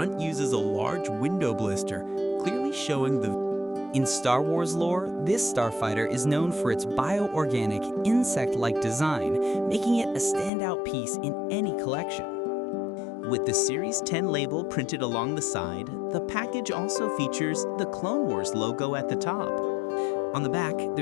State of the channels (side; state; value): right; drops out; at 10.5 s